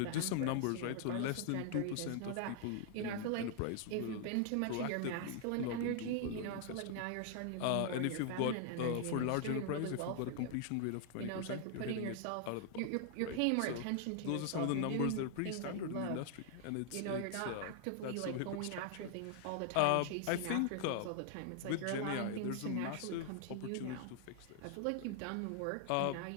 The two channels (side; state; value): both; different; correlation 0.00